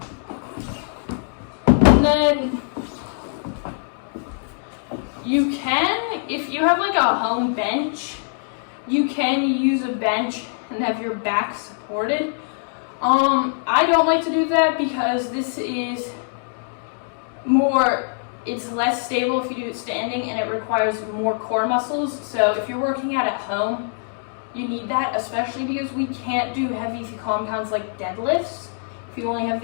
And then you can, if you have like a home bench, you can use a bench and have your back supported. I don't like to do that because this is it's less stable if you do it standing, and it requires more core muscles. So if you're working out at home, you need that, especially because we can't do heavy compounds like deadlifts. If you only have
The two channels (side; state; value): right; silent; digital silence